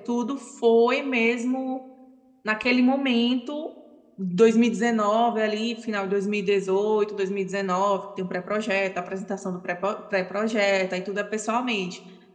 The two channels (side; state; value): both; identical; correlation 1.00